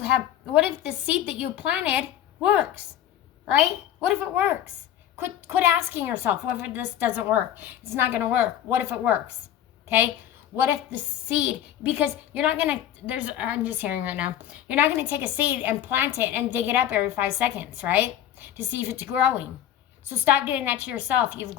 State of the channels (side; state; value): right; quieter; 11.1 dB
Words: if the seed that you planted works, right? What if it works? Quit asking yourself, what if this doesn't work? It's not going to work. What if it works, okay? What if the seed, because you're not going to, I'm just hearing right now, you're not going to take a seed and plant it and dig it up every 5 seconds, right? To see if it's growing. So stop doing that to yourself. You've